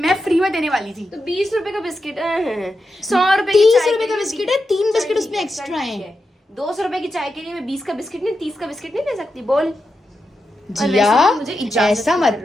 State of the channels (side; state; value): both; normal; correlation 0.88